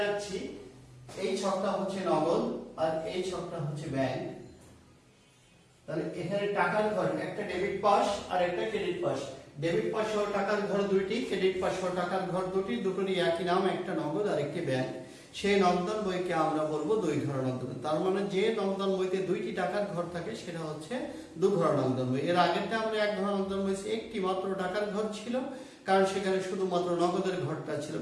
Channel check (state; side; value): identical; both; correlation 1.00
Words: রাখছি। এই ছকটা হচ্ছে নগদ আর এই ছকটা হচ্ছে ব্যাংক। তাহলে এখানে টাকার ঘর, একটা ডেবিট পাশ আর একটা ক্রেডিট পাশ। ডেবিট পাশ সহ টাকার ঘর দুইটি, ক্রেডিট পাশ সহ টাকার ঘর দুটি, দুটোরই একই নাম, একটা নগদ আর একটি ব্যাংক। সেই নগদান বইকে আমরা বলবো দুই ঘর নগদান। তার মানে যে নগদান বইতে দুইটি টাকার ঘর থাকে সেটা হচ্ছে দু ঘর নগদান বই। এর আগেরটা আমরা এক ঘর নগদান বই, একটি মাত্র টাকার ঘর ছিল, কারণ সেখানে শুধুমাত্র নগদের ঘরটা ছিল,